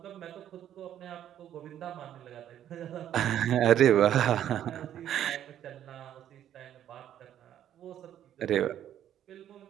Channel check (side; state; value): left; quieter; 10.9 dB